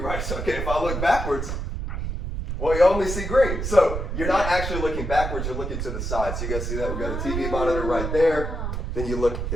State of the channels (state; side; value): noise; right; rumble, 3 dB below the sound